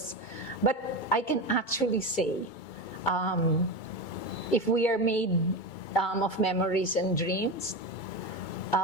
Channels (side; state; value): right; late; 2.2 ms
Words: But I can actually say, if we are made of memories and dreams,